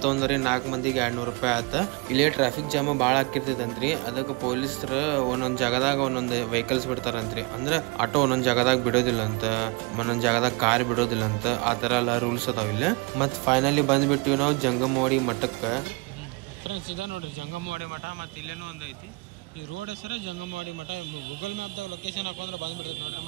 ತೊಗೊಂಡ್ರಿ, 4 ಮಂದಿಗೆ 200 ರೂಪಾಯಿ ಆತ. ಇಲ್ಲೇ ಟ್ರಾಫಿಕ್ ಜಾಮ್ ಭಾಳ ಆಕಿರ್ತೈತಂತ್ರಿ. ಅದಕ್ಕೆ ಪೊಲೀಸರು ಒಂದೊಂದು ಜಾಗದಾಗ ಒಂದೊಂದು ವೆಹಿಕಲ್ಸ್ ಬಿಡ್ತಾರಂತ್ರಿ. ಅಂದ್ರೆ ಆಟೋ ಒಂದೊಂದು ಜಾಗದಾಗ ಬಿಡೋದಿಲ್ಲ ಅಂತ, ಒಂದೊಂದು ಜಾಗದಾಗ ಕಾರ್ ಬಿಡೋದಿಲ್ಲ ಅಂತ, ಆ ಥರ ಎಲ್ಲ ರೂಲ್ಸ್ ಅದಾವ ಇಲ್ಲಿ. ಮತ್ತು ಫೈನಲಿ ಬಂದ್ಬಿಟ್ಟಿವಿ ನಾವು ಜಂಗಮವಾಡಿ ಮಠಕ್ಕೆ. ಫ್ರೆಂಡ್ಸ್ ಇದ ನೋಡ್ರಿ ಜಂಗಮವಾಡಿ ಮಠ. ಮತ್ತು ಇಲ್ಲೇನೂ ಒಂದು ಐತಿ. ಈ ರೋಡ್ ಹೆಸರೇ ಜಂಗಮವಾಡಿ ಮಠ. ಗೂಗಲ್ ಮ್ಯಾಪ್ದಾಗ ಲೊಕೇಶನ್ ಹಾಕೊಂಡ್ರೆ ಬಂದ್ಬಿಡ್ತೈತೆ ನೋಡ್ರಿ.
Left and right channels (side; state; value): left; quieter; 28.8 dB